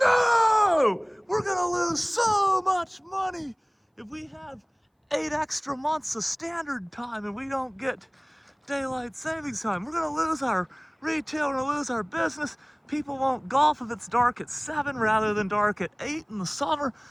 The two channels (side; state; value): both; identical; correlation 1.00